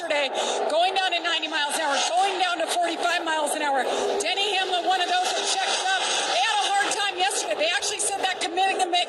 going down to 90 miles an hour, going down to 45 miles an hour. Denny Hamlin, one of those that checked up. They had a hard time yesterday. They actually said that committing the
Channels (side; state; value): both; identical; correlation 1.00